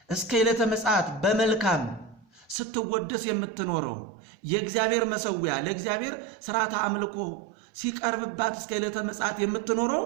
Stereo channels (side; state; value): left; drops out; at 2.6 s